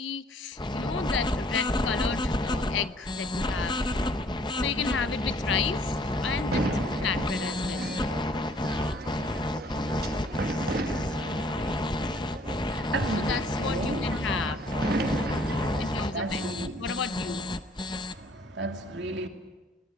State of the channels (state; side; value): normal; both; correlation 0.59